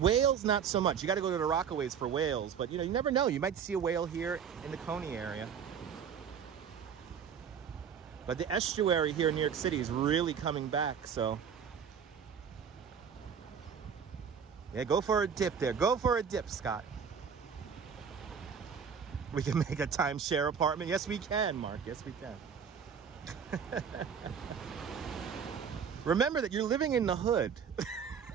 not so much. You got to go to the Rockaways for whales, but you know, you never know. You might see a whale here in the Coney area. But the estuary here in New York City is really coming back, so. Yeah, go for a dip there. Go for a dip, Scott. We can make a timeshare apartment. Yes, we can, Mark. Yes, we can. Remember that you're living in the hood.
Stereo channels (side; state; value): left; quieter; 7.2 dB